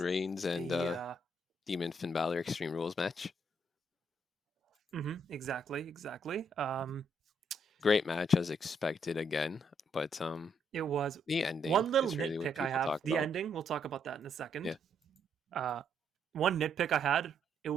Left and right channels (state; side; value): normal; both; correlation 0.73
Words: and the Demon Finn Balor Extreme Rules match. exactly. Great match as expected again, but It was the ending one little is really what nitpick I people have. talk The about. ending. We'll talk about that in a second. Yeah. One nitpick I had. It